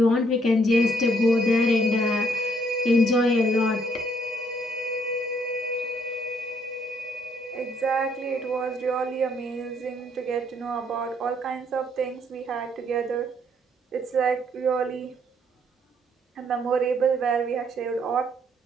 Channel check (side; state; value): both; normal; correlation 0.68